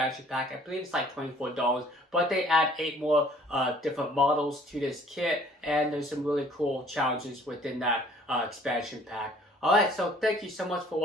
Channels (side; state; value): both; normal; correlation 0.56